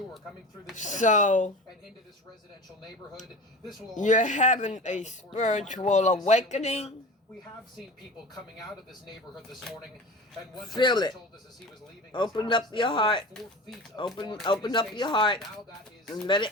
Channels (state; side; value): normal; both; correlation 0.34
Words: coming through this and into this residential neighborhood. This will you're having a spiritual awakening. We have seen people coming out of this neighborhood this morning, and one feel it. told us as he was leaving. Open up your heart. Open up your heart and let it